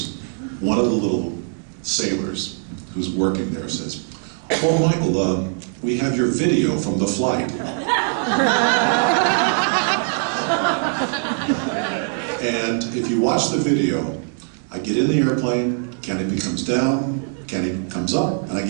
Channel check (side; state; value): left; silent; 59 dB below the other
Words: one of the little sailors who's working there says, oh, Michael, we have your video from the flight. And if you watch the video, I get in the airplane, canopy comes down, canopy comes up, and I